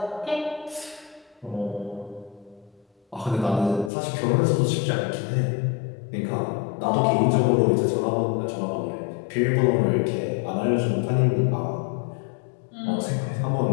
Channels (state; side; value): drops out; right; at 3.9 s